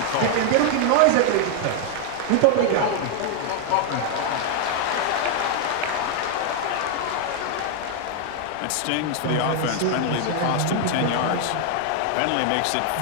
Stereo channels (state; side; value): different; both; correlation 0.00